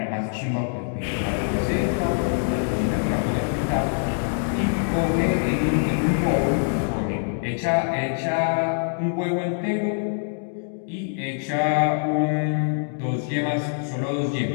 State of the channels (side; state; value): right; silent; digital silence